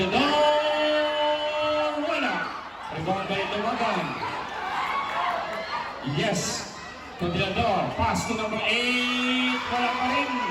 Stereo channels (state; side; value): identical; both; correlation 1.00